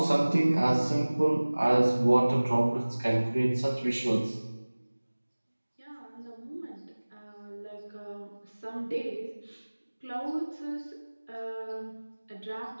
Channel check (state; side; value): inverted; both; correlation -1.00